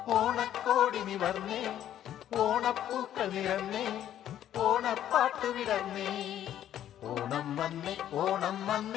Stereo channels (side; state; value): right; quieter; 11.2 dB